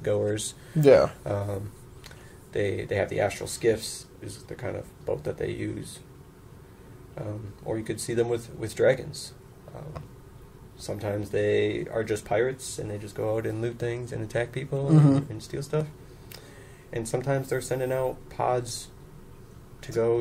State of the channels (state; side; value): identical; both; correlation 1.00